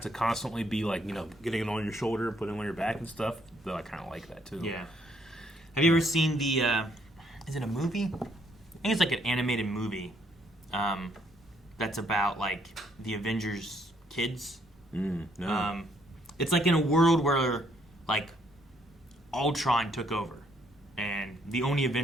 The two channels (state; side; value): normal; both; correlation 0.69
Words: to constantly be like getting it on your shoulder and putting it on your back and stuff. Though I kind of like that too. Yeah. Have you ever seen the? Is it a movie? I think it's like an animated movie. That's about like the Avengers kids. No. It's like in a world where like Ultron took over, and the only